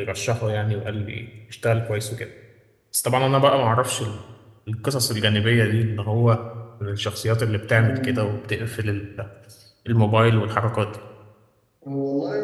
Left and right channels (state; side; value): identical; both; correlation 1.00